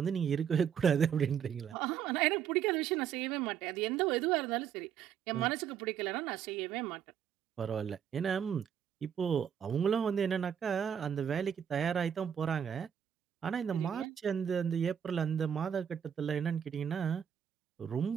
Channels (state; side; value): quieter; left; 8.4 dB